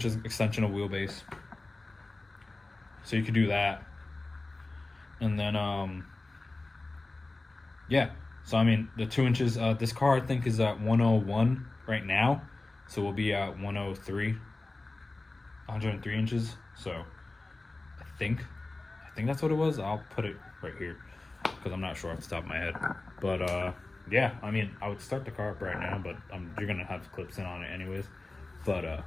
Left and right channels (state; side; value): quieter; right; 3.1 dB